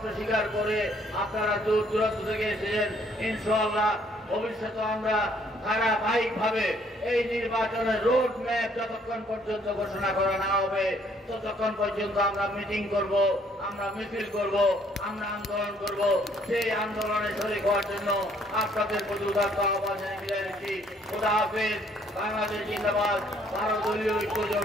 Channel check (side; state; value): both; normal; correlation 0.64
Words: স্বীকার করে আপনারা দূর দূরান্ত থেকে এসেছেন। ইনশাআল্লাহ ভবিষ্যতে আমরা ধারাবাহিকভাবে এই নির্বাচনের রোড ম্যাপ যতক্ষণ পর্যন্ত ঘোষণা করা না হবে ততক্ষণ পর্যন্ত আমরা মিটিং করব, আমরা মিছিল করব, আমরা আন্দোলন করব। সেই আন্দোলনে শরীক হওয়ার জন্য আপনাদের প্রতি উদাত্ত আহ্বান জানিয়ে বিদায় নিচ্ছি। খোদা হাফেজ। বাংলাদেশ জিন্দাবাদ। 12 দলীয় ঐক্য